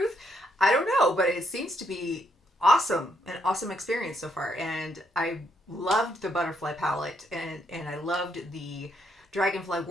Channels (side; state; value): both; normal; correlation 0.74